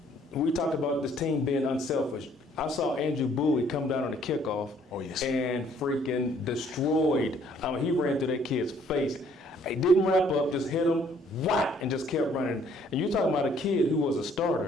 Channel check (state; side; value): normal; both; correlation 0.62